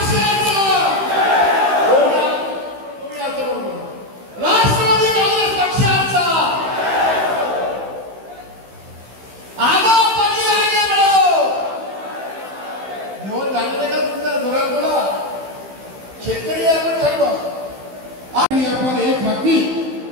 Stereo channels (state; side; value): late; left; 15 ms